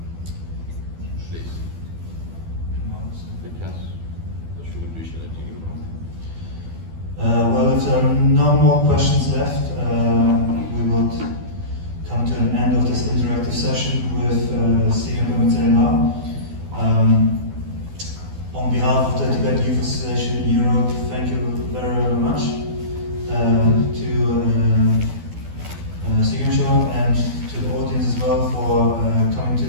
Please. Well, if there are no more questions left, we will come to an end of this interactive session with to the audience as well for coming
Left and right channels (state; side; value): late; left; 12 ms